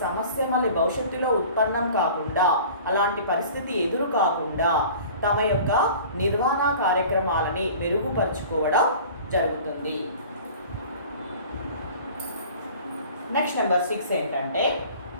సమస్య మళ్ళీ భవిష్యత్తులో ఉత్పన్నం కాకుండా, అలాంటి పరిస్థితి ఎదురు కాకుండా తమ యొక్క నిర్వహణ కార్యక్రమాలని మెరుగుపరుచుకోవడం జరుగుతుంది. నెక్స్ట్ నెంబర్ 6 ఏంటంటే,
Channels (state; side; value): inverted; both; correlation -0.44